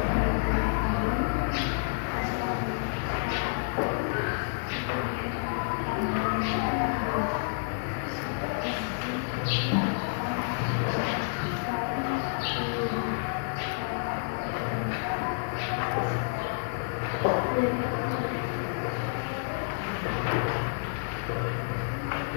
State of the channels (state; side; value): silent; right; digital silence